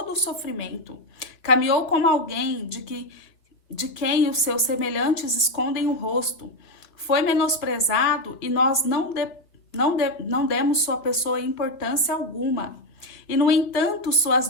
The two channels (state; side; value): late; right; 2.2 ms